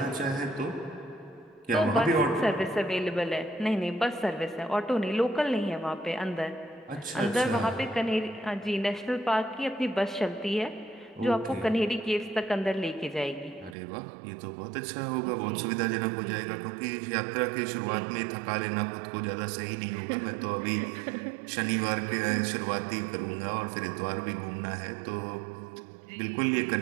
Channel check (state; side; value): drops out; left; at 13.8 s